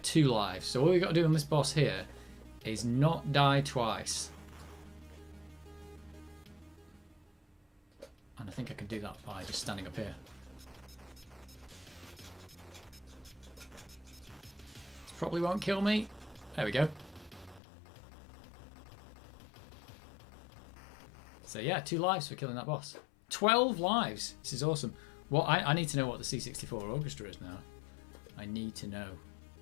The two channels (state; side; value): drops out; right; at 17.6 s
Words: 2 lives. So all we've got to do on this boss here is not die twice. And I think I can do that by just standing up here. This probably won't kill me. There we go. So yeah, 2 lives for killing that boss. 12 lives! This is awesome. Well, I need to know what the C64 Orchestra is now. I need to know.